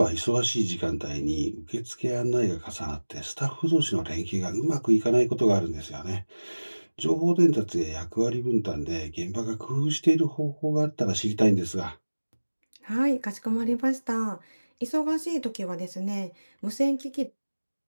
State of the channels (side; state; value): both; inverted; correlation -1.00